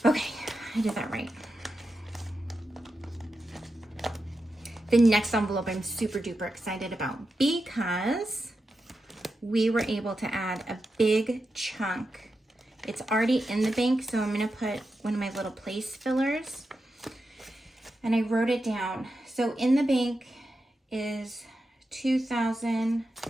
Okay, I did that right. The next envelope I'm super duper excited about because we were able to add a big chunk. It's already in the bank, so I'm gonna put one of my little place fillers. And I wrote it down. So in the bank is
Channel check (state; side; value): normal; both; correlation 0.89